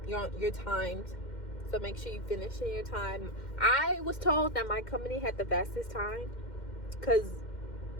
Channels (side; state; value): right; late; 2.1 ms